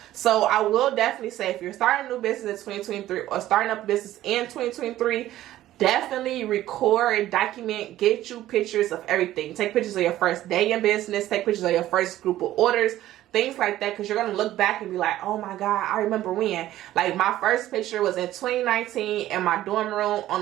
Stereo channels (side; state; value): left; quieter; 14.1 dB